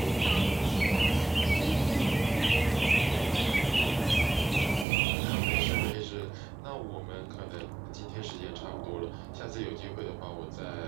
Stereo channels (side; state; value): left; drops out; at 4.9 s